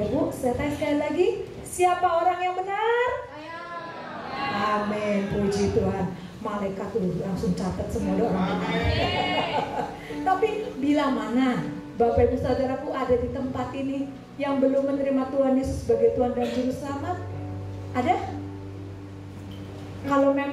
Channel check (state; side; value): identical; both; correlation 1.00